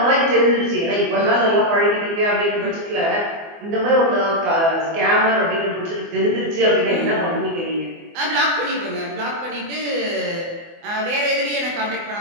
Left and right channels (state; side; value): late; left; 24 ms